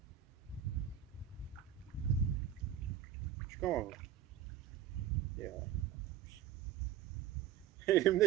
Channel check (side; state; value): left; quieter; 10.4 dB